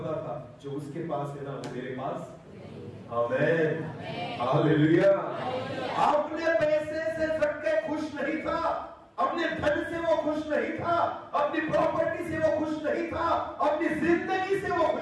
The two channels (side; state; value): both; identical; correlation 1.00